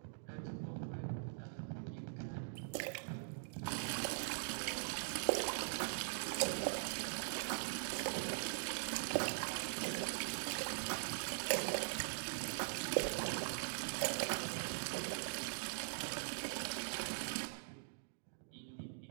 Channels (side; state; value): left; silent; digital silence